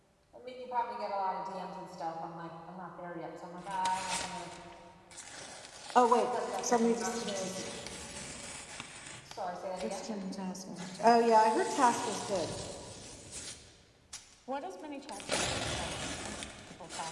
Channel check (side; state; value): both; identical; correlation 1.00